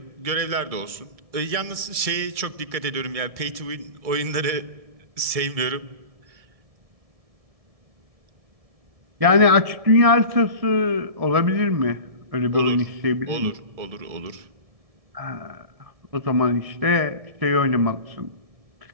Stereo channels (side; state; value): left; late; 1.7 ms